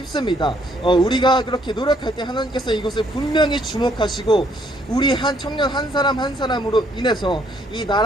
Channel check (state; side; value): normal; both; correlation 0.67